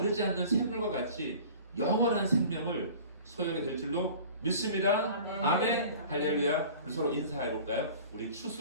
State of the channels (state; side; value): inverted; both; correlation -0.43